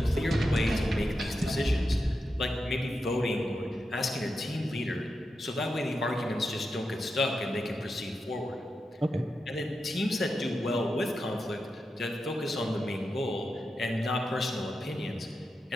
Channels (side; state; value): both; normal; correlation 0.88